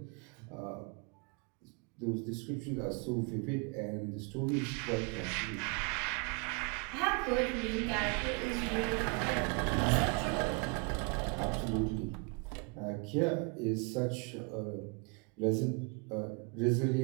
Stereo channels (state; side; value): quieter; left; 31.9 dB